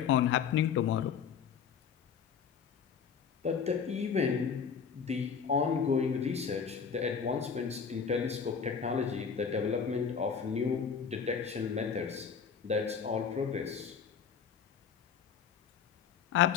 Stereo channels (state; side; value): quieter; right; 6.7 dB